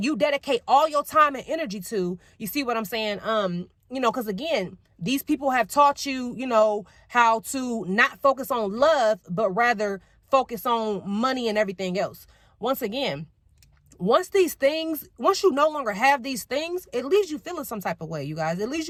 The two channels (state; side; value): identical; both; correlation 1.00